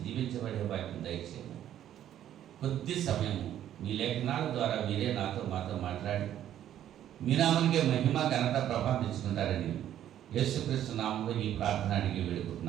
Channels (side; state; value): left; quieter; 11.3 dB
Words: దీవించబడే వాక్యం దయచేయండి. కొద్ది సమయము మీ లేఖనాల ద్వారా మీరే మాతో మాట్లాడి మీ నామానికే మహిమ, ఘనత, ప్రభావం తెచ్చుకుంటారని యేసుక్రీస్తు నామంలో ఈ ప్రార్థన అడిగి